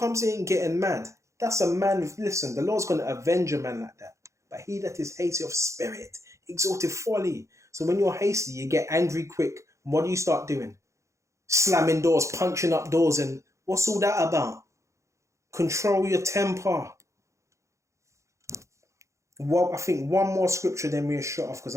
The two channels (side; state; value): left; late; 0.15 ms